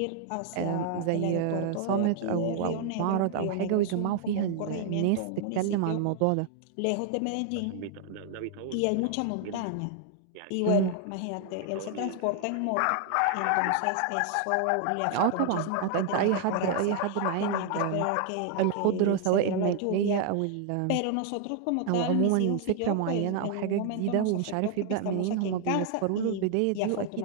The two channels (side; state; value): both; different; correlation 0.00